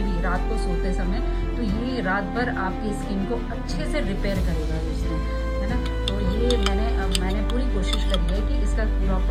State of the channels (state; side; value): identical; both; correlation 1.00